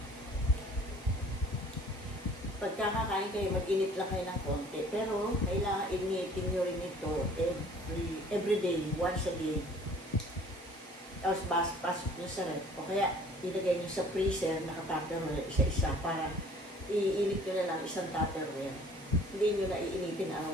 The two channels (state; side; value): normal; both; correlation 0.52